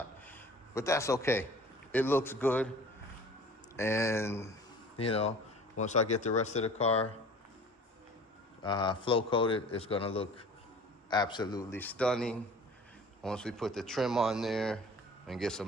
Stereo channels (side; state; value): both; normal; correlation 0.45